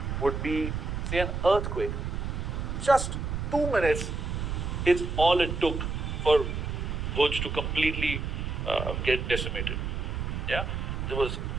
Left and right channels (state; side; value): noise; right; rumble, 3 dB below the sound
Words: would be, say, an earthquake. Just 2 minutes is all it took for Bhuj to completely get decimated.